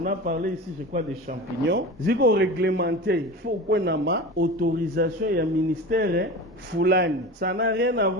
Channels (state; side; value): normal; both; correlation 0.31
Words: a parlé ici je crois des champignons, ziko réglementé, il faut qu'on ait ma autorisation et un ministère fulani. Ça n'a rien à